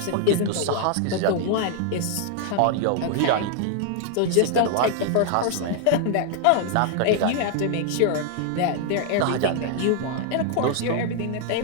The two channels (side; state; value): both; different; correlation 0.00